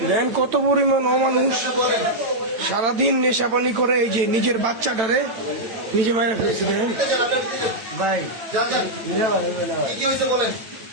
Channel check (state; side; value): late; left; 8.9 ms